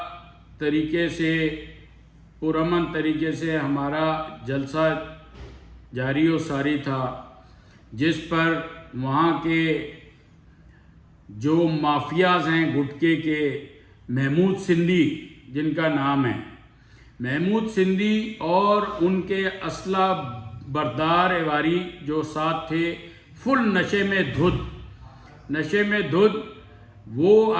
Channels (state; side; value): identical; both; correlation 1.00